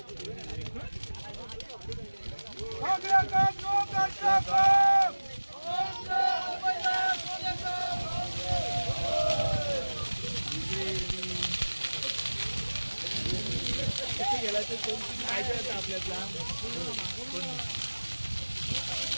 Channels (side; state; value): both; inverted; correlation -1.00